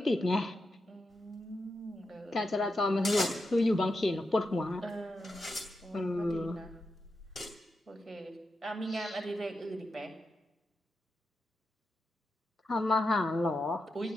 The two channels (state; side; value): normal; both; correlation 0.88